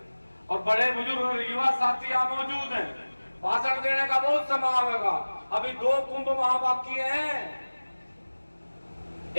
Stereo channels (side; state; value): both; inverted; correlation -1.00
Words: और बड़े बुजुर्ग और युवा साथी यहाँ मौजूद हैं, भाषण देने का बहुत समय आएगा। अभी 2 कुंभ वहां बाकी हैं।